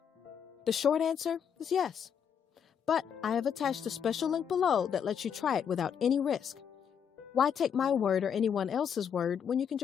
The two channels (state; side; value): quieter; right; 7.8 dB